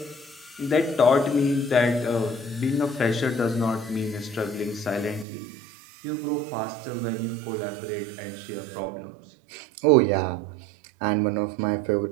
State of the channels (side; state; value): left; drops out; at 5.2 s